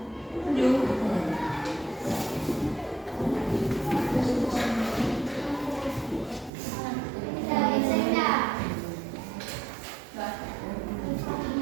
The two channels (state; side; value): drops out; left; at 6.5 s